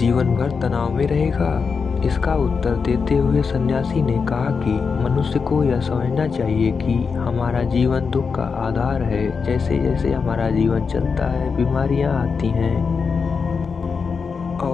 भर तनाव में रहेगा? इसका उत्तर देते हुए सन्यासी ने कहा कि मनुष्य को यह समझना चाहिए कि हमारा जीवन दुख का आधार है। जैसे जैसे हमारा जीवन चलता है, बीमारियां आती हैं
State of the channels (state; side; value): quieter; right; 5.4 dB